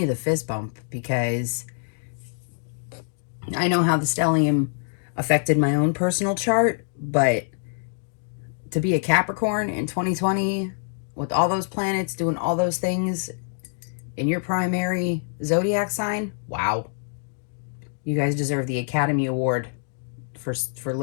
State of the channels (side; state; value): right; silent; digital silence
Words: the fist bump because I know how the stellium affected my own personal chart, but to be a Capricorn in 2020 with all those planets doing all those things in your primary zodiac sign, wow. You guys deserve the Academy Award for